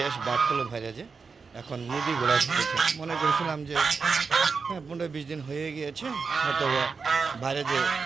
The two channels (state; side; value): quieter; left; 5.0 dB